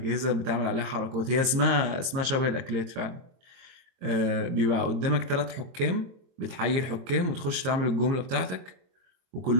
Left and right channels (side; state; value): left; late; 23 ms